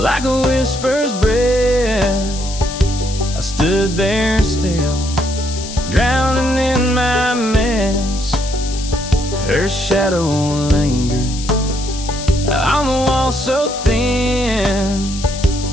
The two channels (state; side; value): noise; left; hiss, 11 dB below the sound